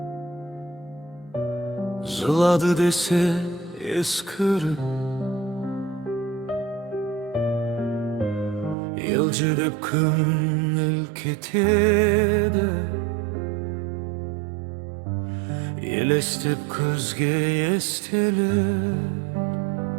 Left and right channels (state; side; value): drops out; left; at 8.8 s